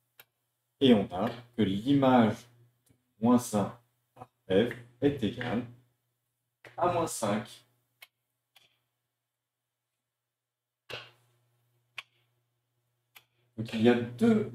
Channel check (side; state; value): both; identical; correlation 1.00